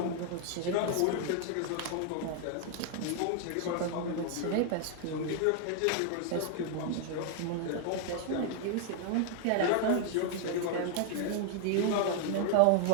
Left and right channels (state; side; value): different; both; correlation 0.00